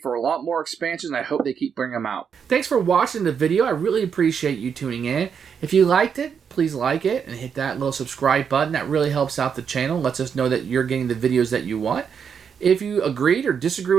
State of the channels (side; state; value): left; quieter; 7.0 dB